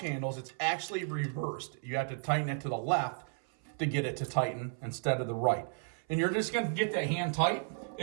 handles, it's actually reversed. You have to tighten it to the left to get it to tighten instead of the right. And you're just going to get that hand tight.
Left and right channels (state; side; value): silent; left; 55 dB below the other